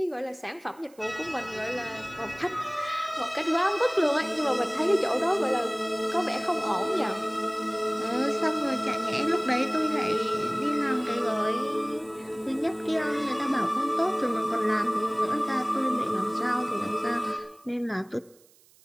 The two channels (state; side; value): noise; right; hiss, 29 dB below the sound